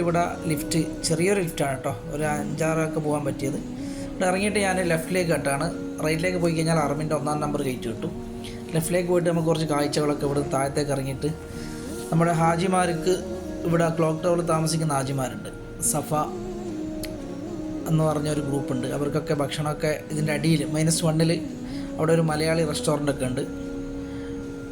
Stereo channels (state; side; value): identical; both; correlation 1.00